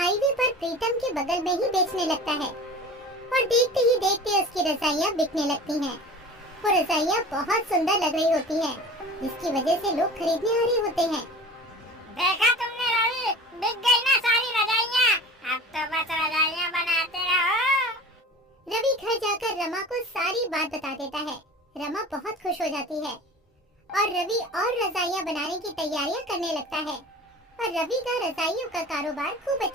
पर प्रीतम के बगल में ही बेचने लगता है और देखते ही देखते उसकी रजाइयाँ बिकने लगती हैं। वो रजाइयाँ बहुत सुंदर लग रही होती हैं, जिसकी वजह से लोग खरीदने आ रहे होते हैं। देखा तुमने रवि, बिक गई ना सारी रजाइयाँ। अब तो बस रजाइयाँ बनाते रहो। रवि घर जाकर रमा को सारी बात बता देता है। रमा बहुत खुश हो जाती है और रवि और रजाइयाँ बनाने की तैयारियां करने लगता है और रवि का रजाइयों का कारोबार खूब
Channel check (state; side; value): normal; both; correlation 0.38